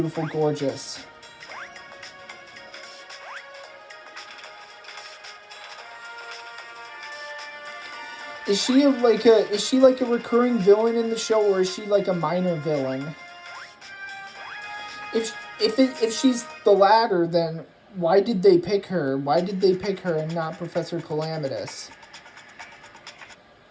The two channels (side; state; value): both; identical; correlation 1.00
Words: Gorgeous. Is she like a recurring villain in the show, or is she like a minor villain? If she's the latter, then why did they pick her? Why did they pick her and not Professor Calamitous?